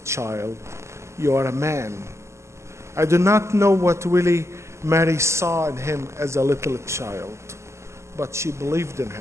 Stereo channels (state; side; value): late; left; 0.13 ms